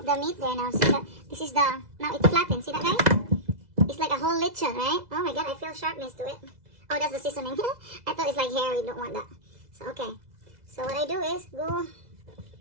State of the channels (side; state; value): left; late; 2.0 ms